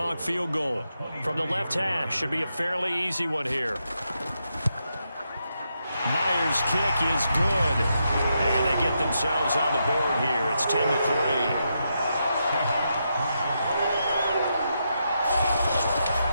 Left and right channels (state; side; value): inverted; both; correlation -0.83